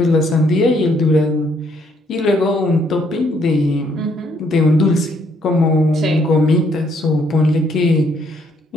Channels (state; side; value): normal; both; correlation 0.69